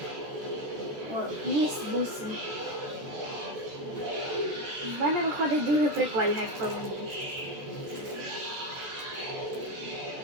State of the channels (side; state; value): left; late; 14 ms